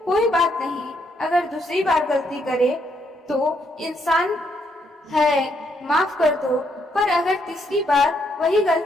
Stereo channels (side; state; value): both; normal; correlation 0.74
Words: कोई बात नहीं, अगर दूसरी बार गलती करे तो इंसान है, माफ कर दो। पर अगर तीसरी बार वही